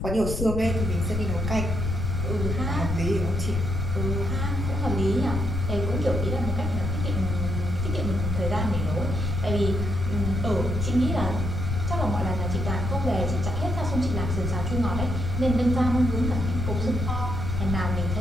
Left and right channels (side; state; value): left; noise; rumble, 2 dB below the sound